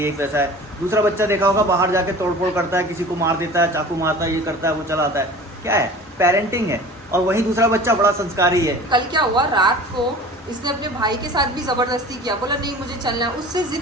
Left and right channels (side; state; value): both; normal; correlation 0.41